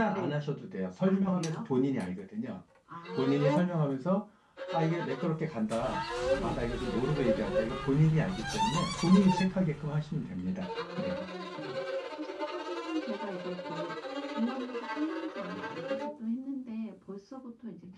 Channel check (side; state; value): both; identical; correlation 1.00